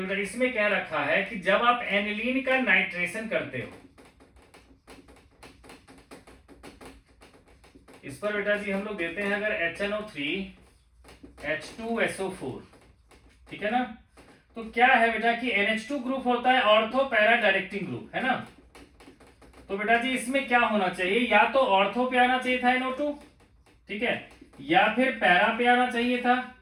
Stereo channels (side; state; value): both; identical; correlation 1.00